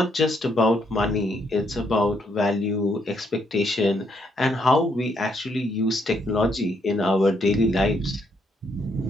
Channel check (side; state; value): both; normal; correlation 0.73